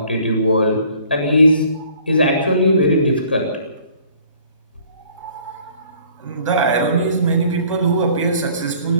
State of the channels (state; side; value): inverted; both; correlation -0.56